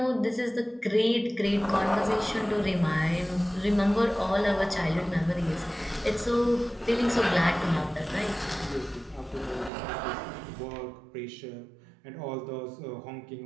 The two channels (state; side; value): drops out; left; at 9.7 s